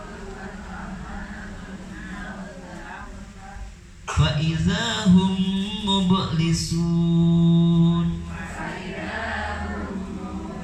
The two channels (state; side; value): identical; both; correlation 1.00